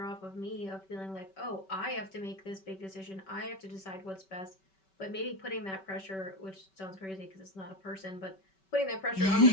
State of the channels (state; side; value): late; right; 5.2 ms